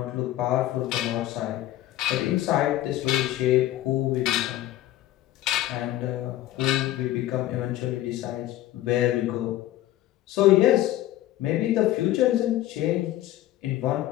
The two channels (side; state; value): right; quieter; 14.5 dB